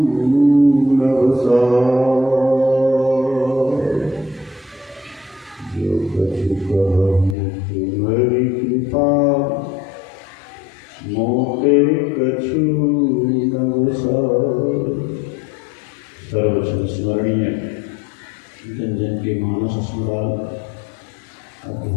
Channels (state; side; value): drops out; right; at 7.4 s